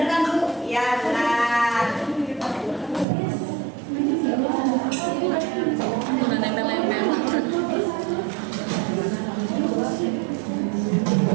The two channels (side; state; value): left; drops out; at 3.1 s